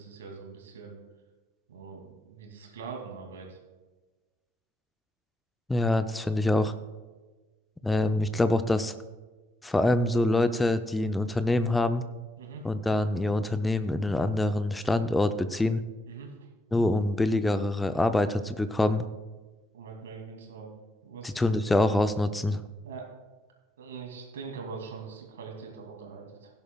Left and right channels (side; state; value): both; normal; correlation 0.83